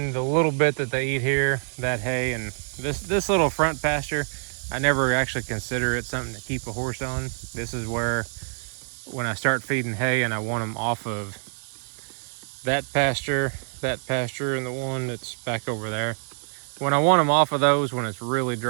the little bit that they eat here, that hay, and this little front pasture, I never actually consider it something to keep a horse on. This is where, when I start feeding hay and I want them off of that pasture, and the one that's back over there. When I want them off of those, when it's really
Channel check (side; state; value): left; silent; 60 dB below the other